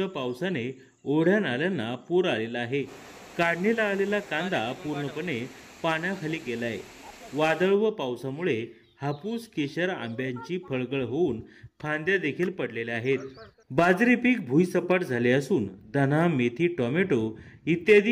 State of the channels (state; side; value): identical; both; correlation 1.00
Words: पावसाने ओढ्या नाल्यांना पूर आलेला आहे। काढणीला आलेला कांदा पूर्णपणे पाण्याखाली गेलाय। वादळ व पावसामुळे हापूस, केशर, आंब्यांची फळगळ होऊन फांद्या देखील पडलेल्या आहेत। बाजरी पीक भुईसपाट झाले असून धना, मेथी, टोमॅटो